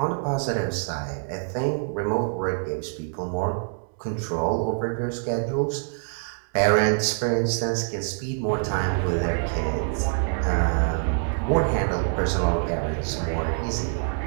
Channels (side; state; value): left; silent; 61 dB below the other